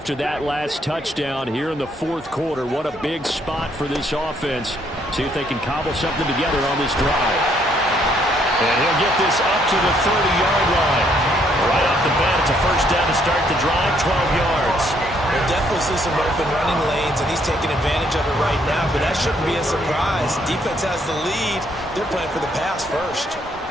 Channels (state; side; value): normal; both; correlation 0.69